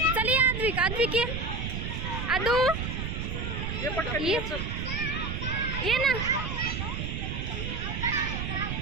चल ये आद्विक ये आदू ये पटकन ये चल ये ना.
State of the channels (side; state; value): right; noise; rumble, 3 dB below the sound